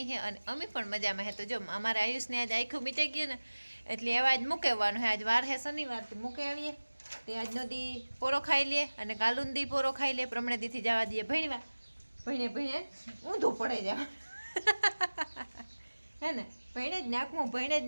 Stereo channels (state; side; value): inverted; both; correlation -1.00